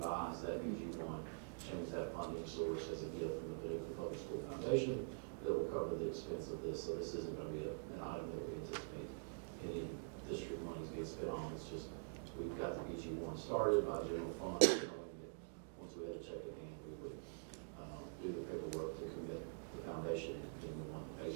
that BG1, change that funding source as a gift from the Paducah Public School Foundation that will cover the expense of this. So this isn't going to be an item that we anticipate any district monies being spent on. It's just, we've got the BG1 started by general fund, knowing that once we had a check in hand, we would do the paperwork to commit the foundation and being the one that pays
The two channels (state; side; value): silent; left; digital silence